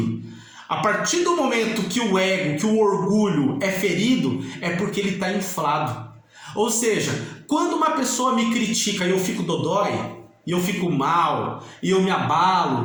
A partir do momento que o ego, que o orgulho é ferido, é porque ele está inflado. Ou seja, quando uma pessoa me critica e eu fico dodói, e eu fico mal, e eu me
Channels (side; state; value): both; identical; correlation 1.00